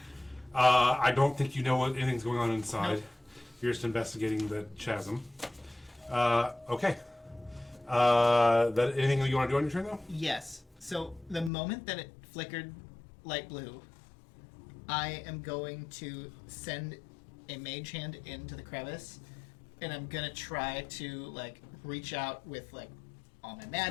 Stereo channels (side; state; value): right; drops out; at 11.5 s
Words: I don't think you know what anything's going on inside. Nope. You're just investigating the chasm. Okay. That anything that you want to do on your turn, though? Yes. So the moment that it flickered light blue, I am going to send a mage hand into the crevice, and I'm gonna try to reach out with all my